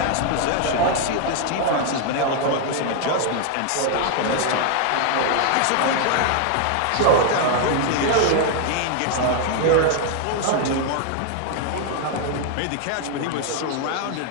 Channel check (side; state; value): both; different; correlation 0.00